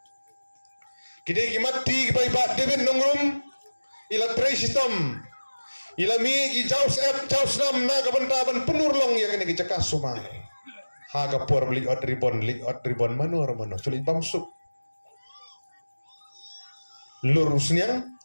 kide ki mati ki bai ba David nongrum ila tray system ila mi ki jaus jaus nam na ga banta ban penurlong ya kene ki cakas suma ha ga por beli out ribbon manor sulit bamsuk lurusnya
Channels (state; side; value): inverted; both; correlation -1.00